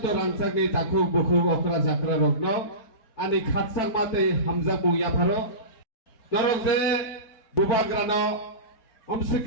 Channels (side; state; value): right; late; 4.4 ms